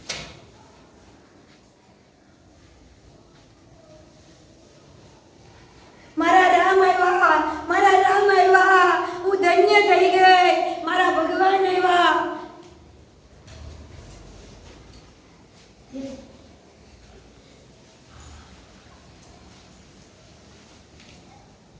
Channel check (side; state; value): both; identical; correlation 1.00